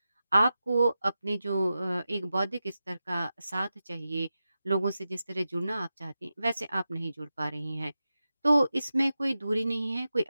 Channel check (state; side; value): inverted; both; correlation -0.92